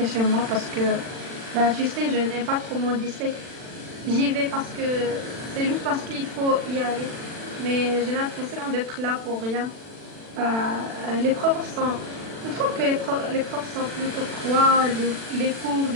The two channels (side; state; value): left; late; 40 ms